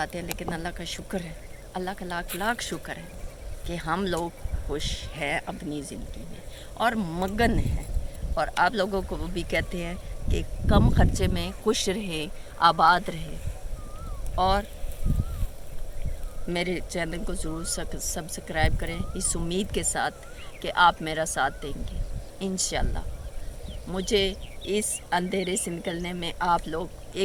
ہیں, لیکن اللہ کا شکر ہے, اللہ کا لاکھ لاکھ شکر ہے کہ ہم لوگ خوش ہیں اپنی زندگی میں اور مگن ہیں. اور آپ لوگوں کو وہ بھی کہتے ہیں کہ کم خرچے میں خوش رہیں, آباد رہیں. اور میرے چینل کو ضرور سبسکرائب کریں اس امید کے ساتھ کہ آپ میرا ساتھ دیں گے. انشاءاللہ مجھے اس اندھیرے سے نکلنے میں آپ لوگ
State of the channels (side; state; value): both; identical; correlation 1.00